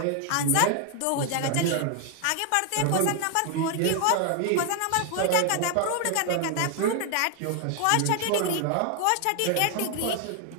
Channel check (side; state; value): both; different; correlation 0.00